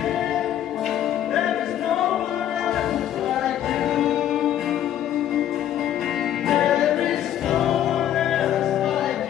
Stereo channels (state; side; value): quieter; right; 11.2 dB